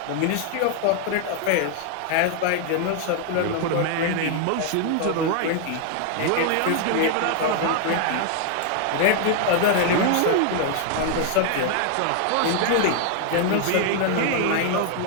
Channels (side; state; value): both; different; correlation 0.00